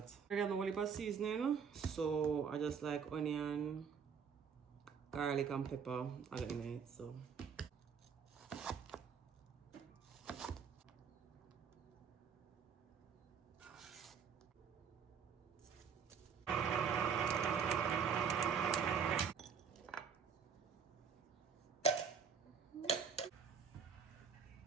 I got no heap of seasoning, so I just like onion, garlic and pepper all in it. So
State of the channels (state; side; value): quieter; left; 6.7 dB